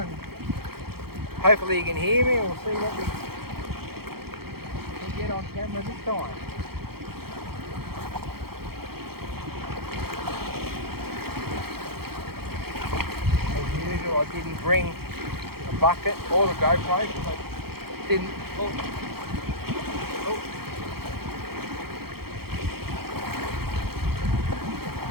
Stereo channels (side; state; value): left; late; 0.95 ms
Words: hopefully you can hear me. We'll see what we can get on camera this time. I didn't bring a bucket or the GoPro. I didn't. Oh.